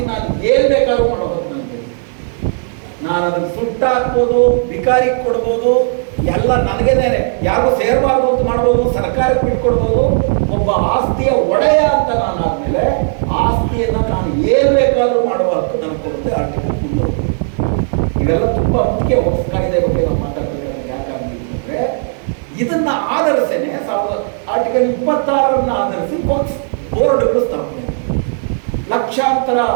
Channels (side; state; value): left; silent; 66 dB below the other